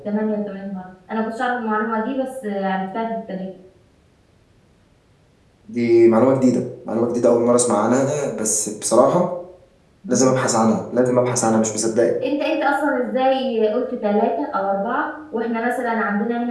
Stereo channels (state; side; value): identical; both; correlation 1.00